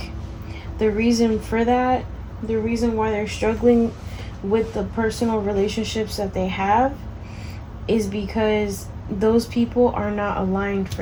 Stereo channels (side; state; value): both; identical; correlation 1.00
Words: the reason for that, the reason why they're struggling with the personal relationships that they have is because those people are not aligned